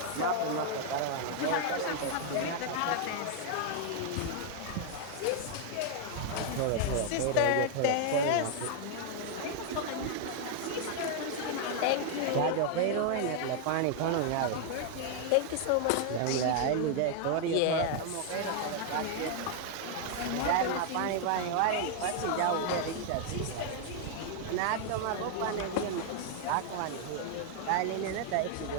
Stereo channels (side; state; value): both; different; correlation 0.00